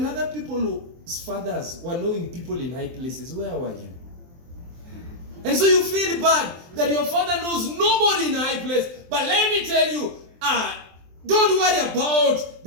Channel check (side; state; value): left; late; 23 ms